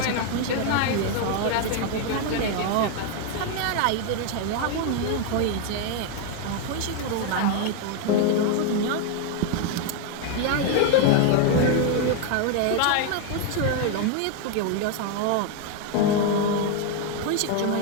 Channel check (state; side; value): different; both; correlation 0.01